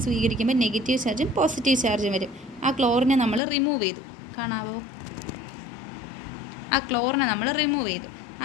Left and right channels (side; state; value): right; drops out; at 3.4 s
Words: സ്വീകരിക്കുമ്പോൾ നെഗറ്റീവ് ചാർജും പോസിറ്റീവ് ചാർജും വരും. ആ ക്ലോറിനെ നമ്മൾ റിമൂവ് ചെയ്തു, കാണാവോ? ആ ക്ലോറിനെ നമ്മൾ റിമൂവ് ചെയ്തു.